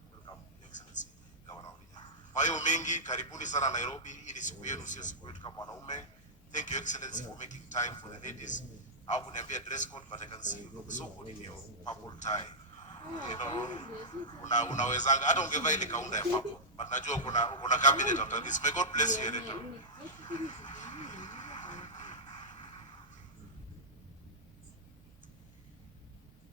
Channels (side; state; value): both; normal; correlation -0.10